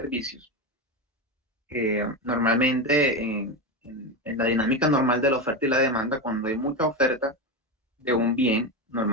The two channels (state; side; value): normal; both; correlation 0.15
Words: Normalmente, en la dinámica normal de la oferta y la demanda, cuando hay mucha oferta de un bien,